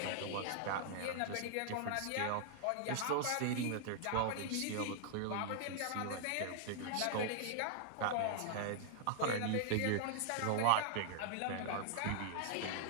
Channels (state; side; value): different; both; correlation -0.01